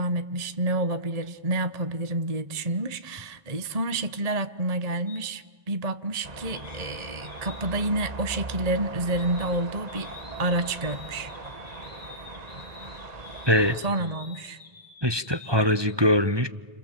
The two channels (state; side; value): late; left; 1.7 ms